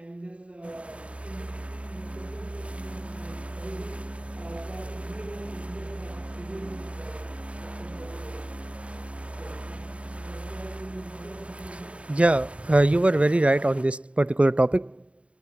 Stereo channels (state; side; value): late; left; 0.062 ms